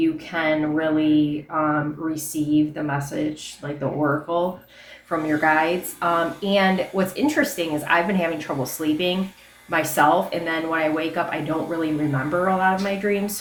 can really receive the message, like the oracle from your guides. And what's interesting is I've been having trouble sleeping myself, and then when I wake up I don't really remember a lot of my dreams.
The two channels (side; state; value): both; identical; correlation 1.00